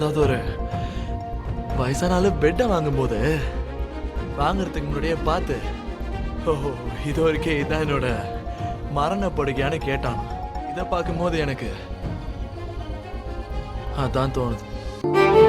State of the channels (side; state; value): both; identical; correlation 1.00